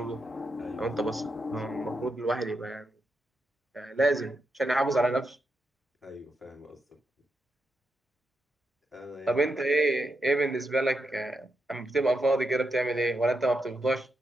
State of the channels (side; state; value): both; normal; correlation 0.84